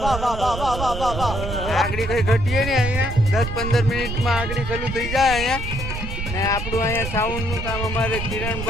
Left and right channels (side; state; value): right; noise; rumble, 5 dB below the sound